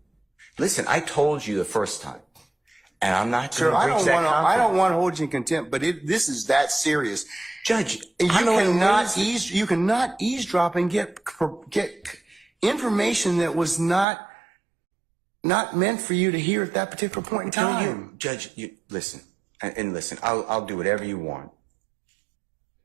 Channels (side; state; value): left; drops out; at 14.1 s